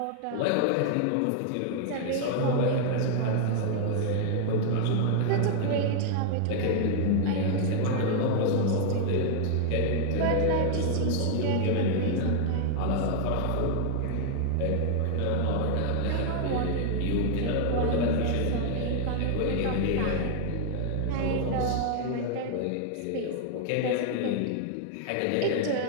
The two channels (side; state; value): both; different; correlation 0.00